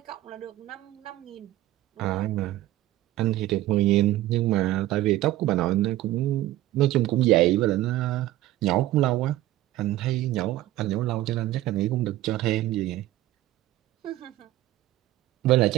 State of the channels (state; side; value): quieter; left; 15.3 dB